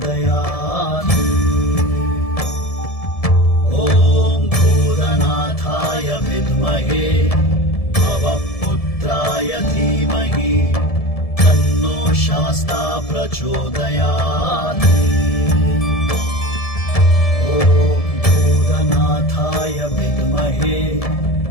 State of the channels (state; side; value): late; right; 1.7 ms